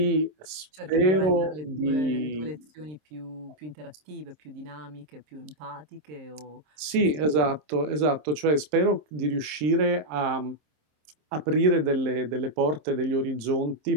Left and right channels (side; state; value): left; late; 26 ms